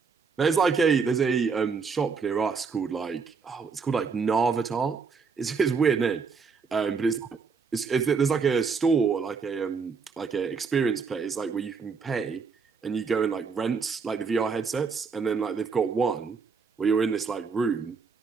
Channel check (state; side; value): quieter; left; 5.3 dB